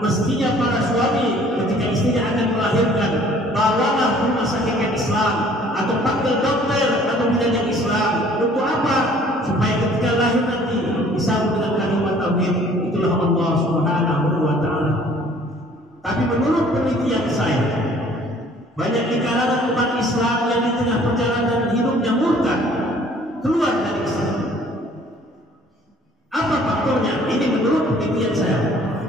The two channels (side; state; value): both; normal; correlation 0.56